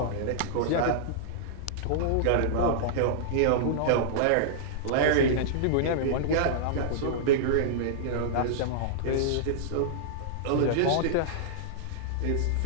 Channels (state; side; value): different; both; correlation -0.02